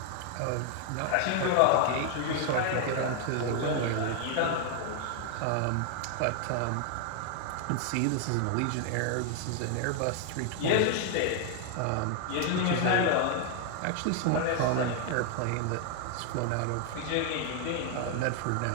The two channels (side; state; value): both; different; correlation 0.00